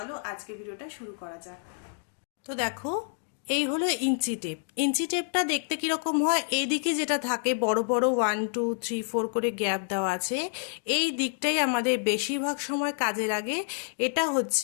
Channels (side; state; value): right; silent; 59 dB below the other